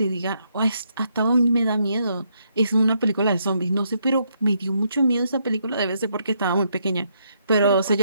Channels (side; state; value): both; inverted; correlation -0.75